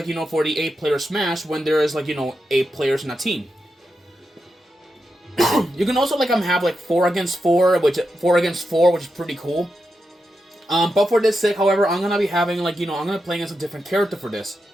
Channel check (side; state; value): both; normal; correlation 0.87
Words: you know, for the 8-player Smash when there is, like, you know, 8 players in a team. You can also like have like 4 against 4, which is pretty cool. But for this sake, however, I'm gonna be having, like, you know, I'm gonna be playing as a different character for this.